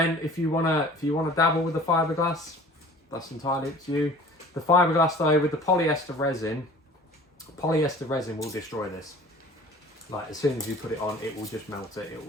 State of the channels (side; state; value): both; normal; correlation 0.46